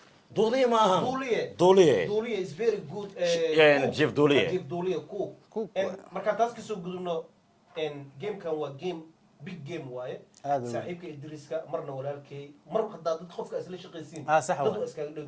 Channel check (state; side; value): identical; both; correlation 1.00